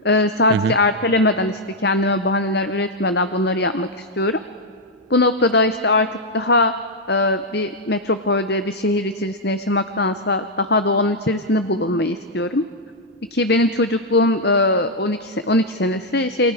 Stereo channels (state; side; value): normal; both; correlation -0.02